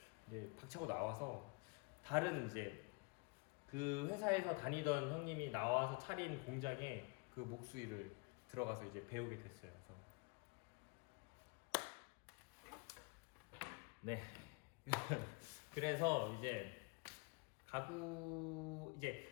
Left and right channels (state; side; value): quieter; right; 29.3 dB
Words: 이제 박차고 나와서 다른 이제 그 회사에서 다니던 형님이 나와서 차린 공장에 그 목수 일을 들어가서 이제 배우게 됐어요. 그래서 네. 그래서 이제 가구 이제